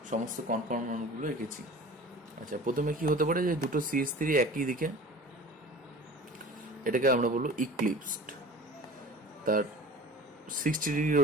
সমস্ত কনফার্মেশনগুলো এঁকেছি। আচ্ছা, প্রথমে কি হতে পারে যে দুটো CH3 একই দিকে, এটাকে আমরা বলবো ইক্লিপসড। তার 60 ডিগ্রি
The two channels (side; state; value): both; normal; correlation 0.41